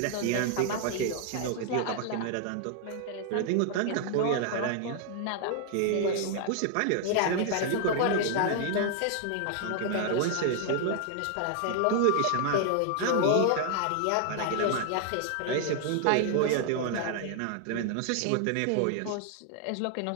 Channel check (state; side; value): different; both; correlation 0.00